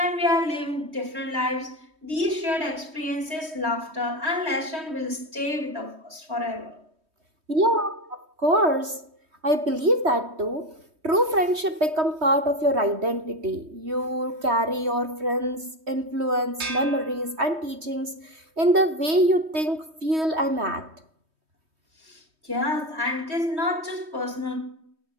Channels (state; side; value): late; left; 3.2 ms